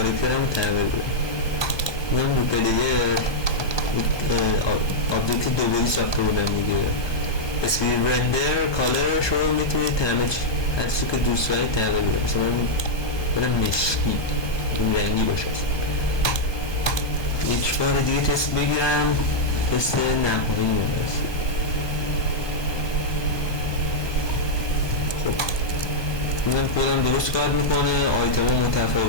رو تغییر بدم. میام رو پلیر آبجکت دوباری ساخته بودم دیگه، اسکرین رندر کالرش رو میتونید هر چیزی که دوست دارید تغییر بدید. مثلا من برم مشکی، این رنگی باشه. یک بار دیگه تست بگیرم، تست نهایی هست. خب اینم کدم درست کار میکنه، آیتم ها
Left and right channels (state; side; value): late; right; 1.2 ms